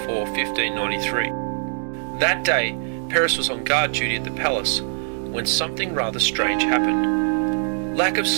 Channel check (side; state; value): left; silent; digital silence